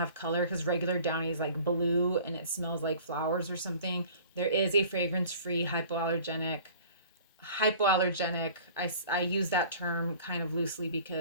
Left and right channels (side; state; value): both; inverted; correlation -0.47